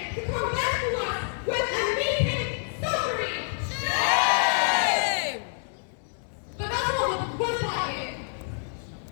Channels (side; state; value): right; silent; 60 dB below the other